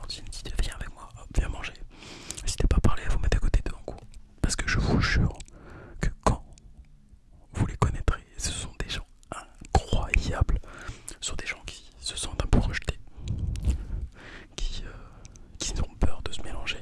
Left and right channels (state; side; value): identical; both; correlation 1.00